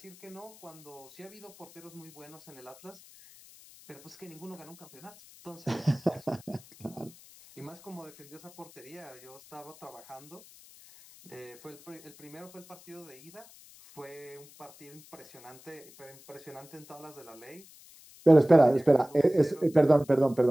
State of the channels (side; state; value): left; noise; hiss, 22 dB below the sound